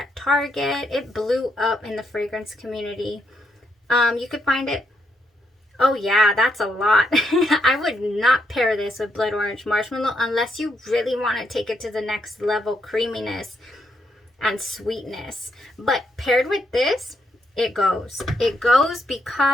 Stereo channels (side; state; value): both; normal; correlation 0.77